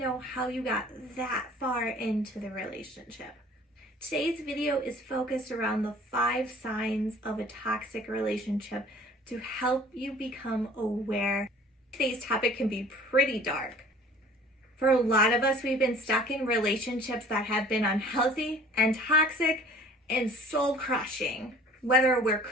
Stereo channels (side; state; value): both; normal; correlation 0.50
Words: how you got that far into the relationship. Today's video is focused around the 5 signs of a toxic relationship to help you become aware. Today's topic can be pretty dark. For a lot of us, we've been stuck in relationships that have been unhealthy and toxic and soul-crushing. Whether we're